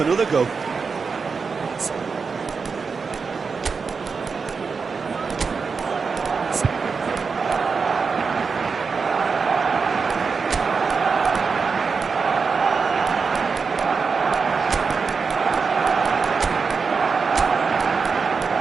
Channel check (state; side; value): quieter; left; 5.1 dB